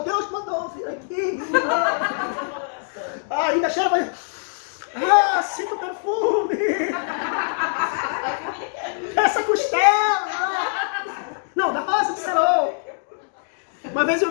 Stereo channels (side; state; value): right; silent; 63 dB below the other